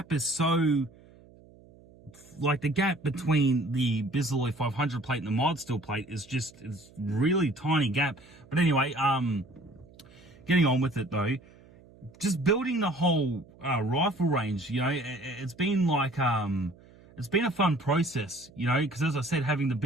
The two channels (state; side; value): noise; right; hum, 25 dB below the sound